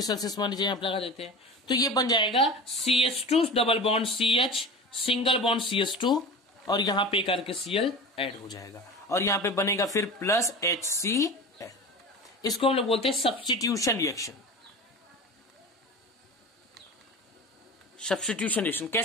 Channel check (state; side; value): normal; both; correlation 0.32